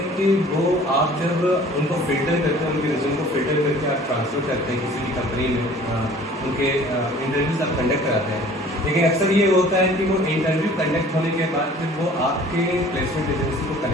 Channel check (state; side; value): normal; both; correlation 0.49